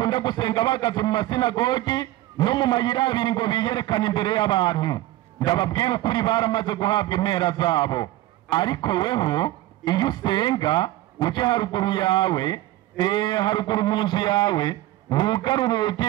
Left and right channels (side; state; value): left; quieter; 16.3 dB